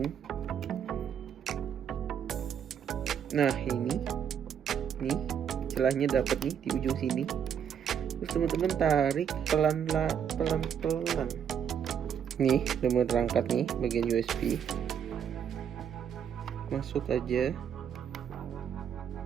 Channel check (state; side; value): quieter; left; 8.3 dB